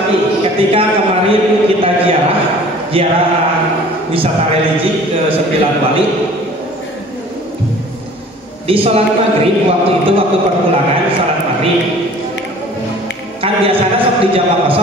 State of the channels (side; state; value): both; normal; correlation 0.48